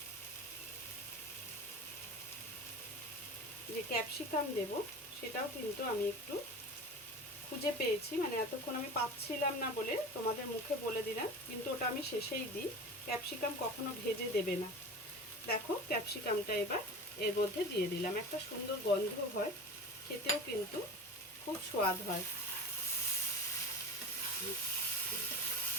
যে ক্যাপসিকাম দেব, সেটাও কিন্তু আমি একটু খুঁজে পেয়েছি, মানে এতক্ষণ আমি পাচ্ছিলাম না বলে তোমাদের মুখে বলে দিলাম, কিন্তু ওটা আমি শেষেই দিই। ক্যাপসিকাম কখনো ভেজে দেবে না। দেখো ক্যাপসিকামটা এবার এর মধ্যে দিয়ে দিলাম, একটা সুন্দর গন্ধ হয়, খেতেও কিন্তু খুব স্বাদ হয়।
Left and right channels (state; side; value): normal; both; correlation 0.33